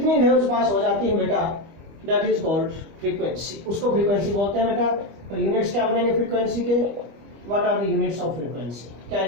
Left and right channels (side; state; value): left; late; 25 ms